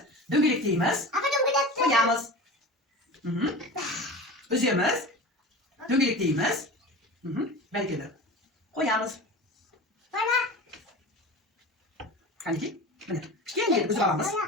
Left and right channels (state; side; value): normal; both; correlation 0.32